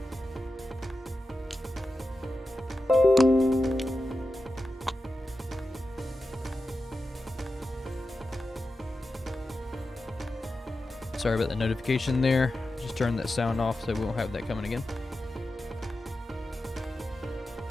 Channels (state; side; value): normal; both; correlation 0.92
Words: Sorry about the notification there. Just turn that sound off so we won't have that coming again.